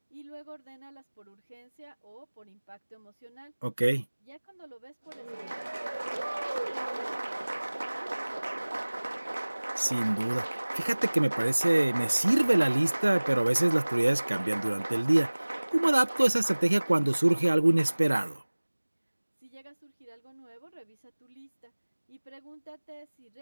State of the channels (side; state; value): both; inverted; correlation -1.00